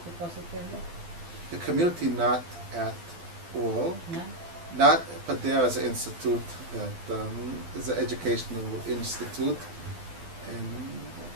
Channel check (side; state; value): left; late; 12 ms